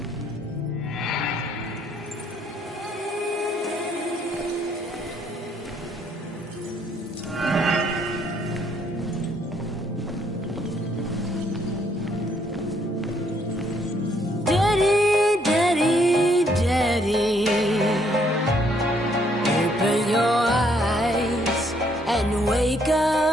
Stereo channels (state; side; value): normal; both; correlation 0.68